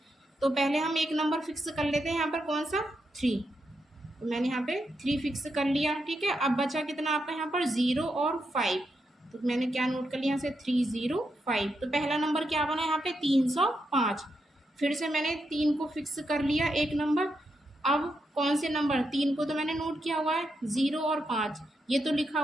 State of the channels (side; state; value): both; normal; correlation 0.83